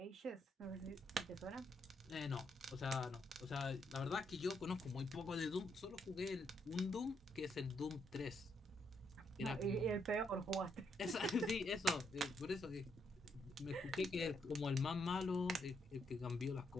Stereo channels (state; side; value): normal; both; correlation 0.76